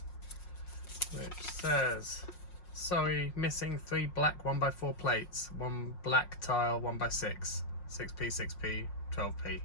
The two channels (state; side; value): late; right; 5.5 ms